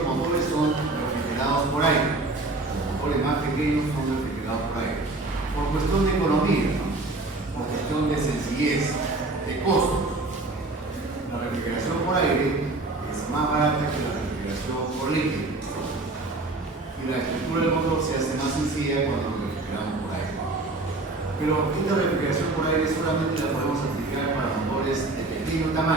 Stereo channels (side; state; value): left; quieter; 3.1 dB